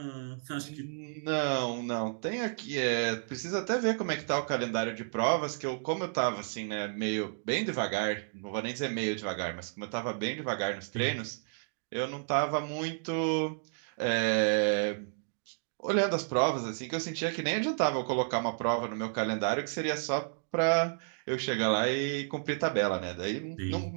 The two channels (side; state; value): left; silent; digital silence